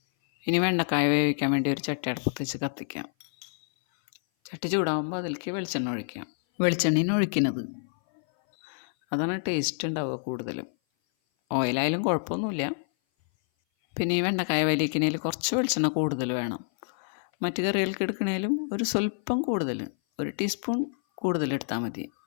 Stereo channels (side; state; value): right; silent; 57 dB below the other